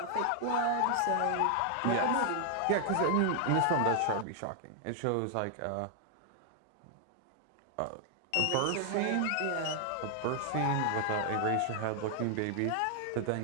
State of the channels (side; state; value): both; different; correlation 0.00